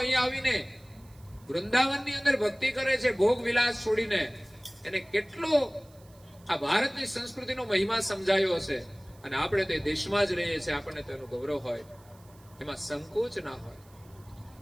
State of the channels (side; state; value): right; noise; hiss, 28 dB below the sound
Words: આવીને વૃંદાવનની અંદર ભક્તિ કરે છે, ભોગ વિલાસ છોડીને. એને કેટલો આ ભારતની સંસ્કૃતિનો મહિમા સમજાયો હશે. અને આપણે તે દેશમાં જ રહીએ છીએ, આપણને તેનું ગૌરવ હોય, એમાં સંકોચ ના હોય.